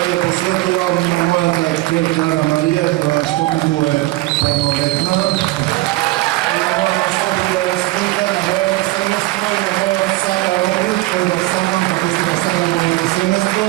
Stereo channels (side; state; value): left; quieter; 19.1 dB